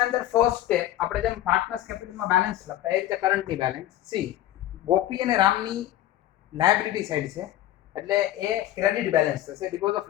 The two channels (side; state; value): right; quieter; 13.7 dB